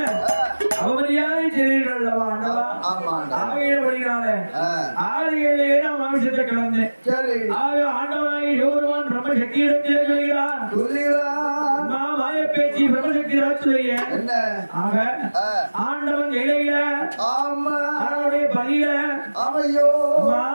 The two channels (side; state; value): both; inverted; correlation -1.00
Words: அவமரியாதை செய்தீர்கள் அல்லவா ஆகியபடினால 6-7 ஏழாம் மாமிசத்தை கலந்தேன் ஆக ஆண்டவனாகி சிவபெருமான் பிரம்ம சக்தியிடத்திலே சொல்கிறார் மாய பேச்சு பிரம்மசக்தி ராட்சுடைய ஆக ஆண்டவன் இலையில அவனுடைய பதில